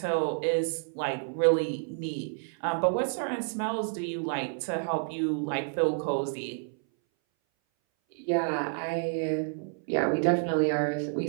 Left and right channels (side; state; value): left; silent; 58 dB below the other